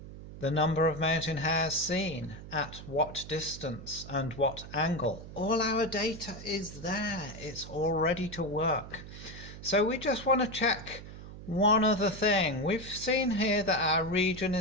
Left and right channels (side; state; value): right; noise; hum, 13 dB below the sound